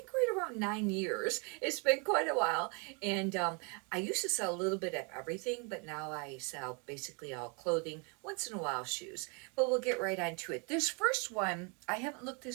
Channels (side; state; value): left; quieter; 34.3 dB